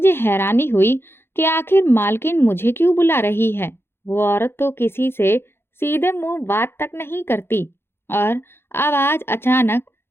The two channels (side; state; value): right; late; 0.11 ms